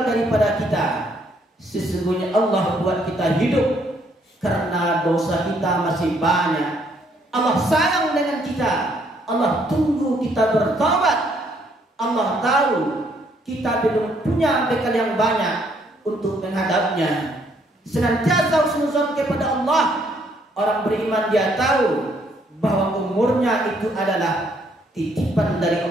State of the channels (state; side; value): normal; both; correlation 0.68